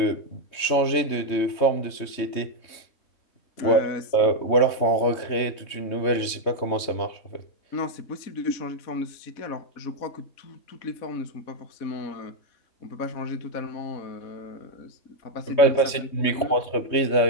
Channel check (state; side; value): late; right; 3.2 ms